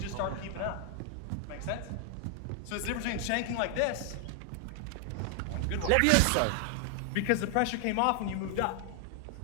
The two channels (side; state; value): both; different; correlation 0.00